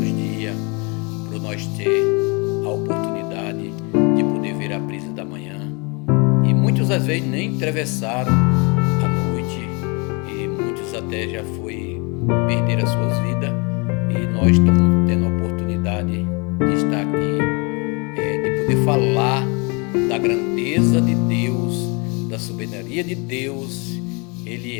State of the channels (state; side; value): quieter; right; 31.0 dB